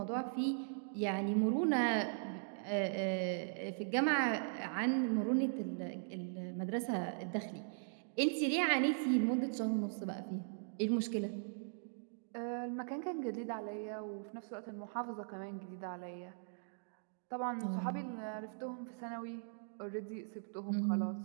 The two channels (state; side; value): silent; left; digital silence